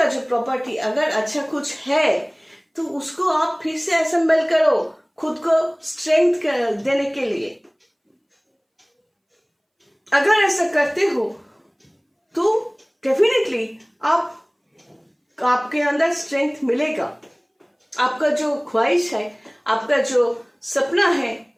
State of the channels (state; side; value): identical; both; correlation 1.00